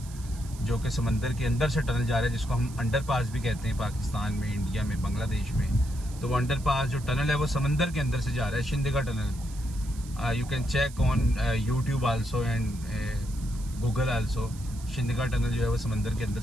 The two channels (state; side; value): noise; right; hiss, 19 dB below the sound